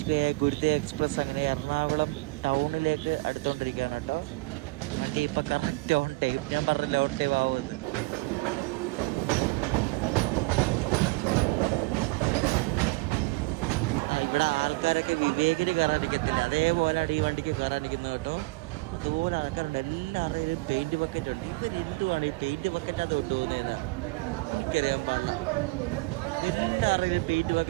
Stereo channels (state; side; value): quieter; left; 24.2 dB